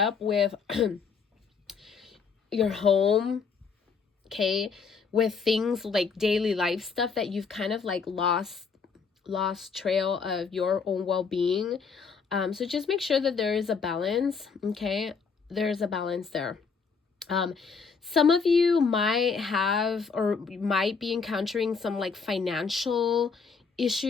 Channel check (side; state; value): right; quieter; 5.5 dB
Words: with your home, okay, with things like daily life stuff that you've kind of like lost trail of your own well-being. So just make sure that there is a balance. Okay, there's a balance there. Some of you might have or might be encountering some like financial